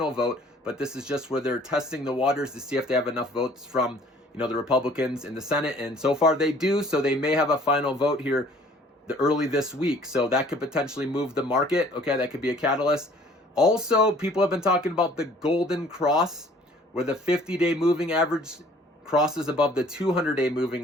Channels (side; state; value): both; normal; correlation 0.54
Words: vote, but this is just where they're testing the waters to see if they have enough votes from, the Republicans in the Senate. And so far they do. So they may have a final vote here early this week. So that could potentially move the market. Okay, that could be a catalyst. Also, people have been talking about the golden cross, where the 50-day moving average crosses above the 200-day